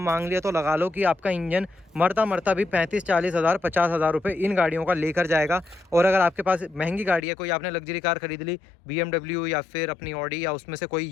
लिया तो लगा लो कि आपका इंजन मरता भी 35-40 हज़ार 50 हज़ार रुपये इन गाड़ियों का लेकर जाएगा। और अगर आपके पास महंगी गाड़ी है, कोई आपने लग्जरी कार खरीद ली, BMW या फिर अपनी ऑडी या उसमें से कोई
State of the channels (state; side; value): drops out; right; at 7.2 s